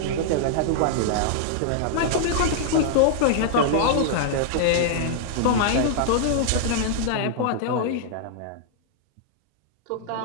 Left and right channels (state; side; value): different; both; correlation -0.01